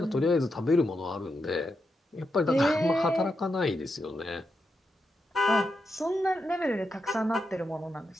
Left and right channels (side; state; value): both; normal; correlation 0.85